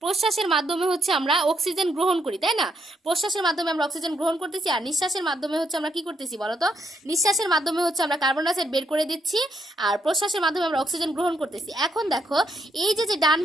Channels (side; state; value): both; normal; correlation 0.77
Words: প্রশ্বাসের মাধ্যমে হচ্ছে আমরা অক্সিজেন গ্রহণ করি, তাই না? প্রশ্বাসের মাধ্যমে আমরা অক্সিজেন গ্রহণ করতেছি, আর নিঃশ্বাসের মাধ্যমে হচ্ছে আমরা কি করতেছি বলতো, নিঃশ্বাসের মাধ্যমে হচ্ছে আমরা কার্বন ডাইঅক্সাইড বের করে দিচ্ছি, আর প্রশ্বাসের মাধ্যমে আমরা অক্সিজেন গ্রহণ করতেছি। এখন দেখো এই যে যে ডান